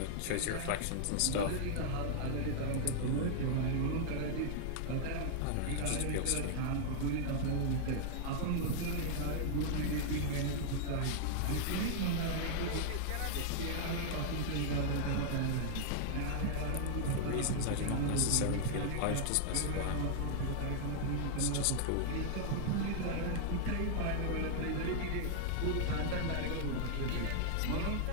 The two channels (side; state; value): both; different; correlation -0.01